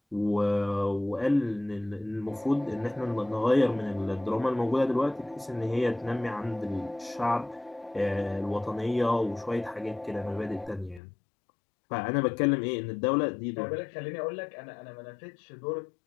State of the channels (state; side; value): drops out; right; at 11.0 s